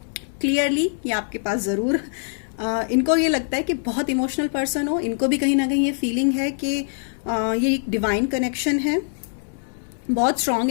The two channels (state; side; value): silent; right; digital silence